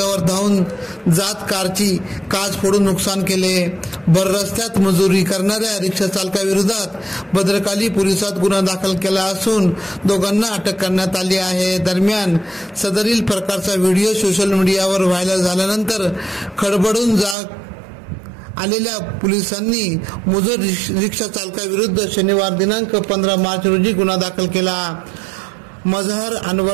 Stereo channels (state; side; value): drops out; left; at 17.4 s